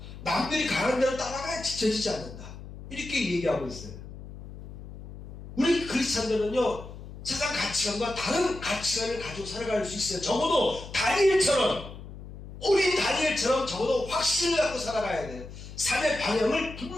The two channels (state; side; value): noise; left; hum, 13 dB below the sound